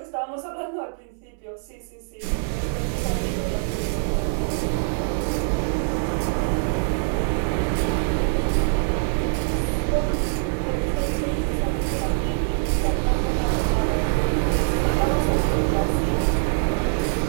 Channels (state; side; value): silent; left; 63 dB below the other